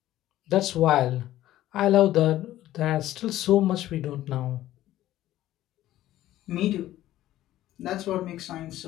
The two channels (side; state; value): right; quieter; 14.1 dB